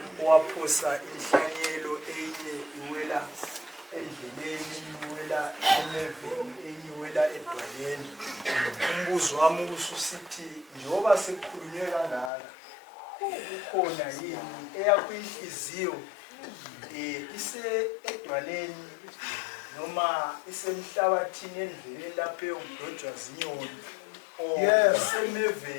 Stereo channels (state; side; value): drops out; right; at 12.3 s